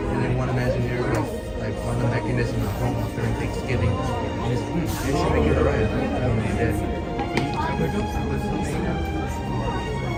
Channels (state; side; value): identical; both; correlation 1.00